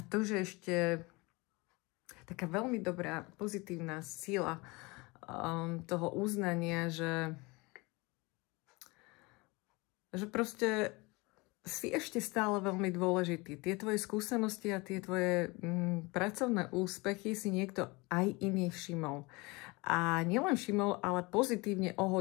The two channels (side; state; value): right; quieter; 25.4 dB